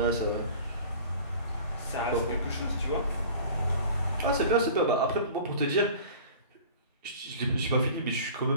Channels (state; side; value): inverted; both; correlation -0.43